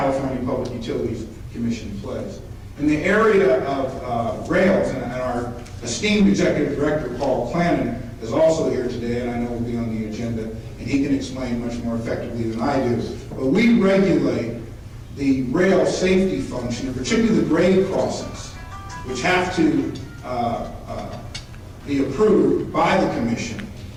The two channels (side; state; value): both; identical; correlation 1.00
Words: Public Utilities Commission plays. In the area of rails, and our esteemed Executive Director, Paul Clannon, is also here today, and I know will be on the agenda, and he can explain much more effectively than I do. But we regulate the rail safety function, and particularly the grade crossings, which have to be approved by the Commission,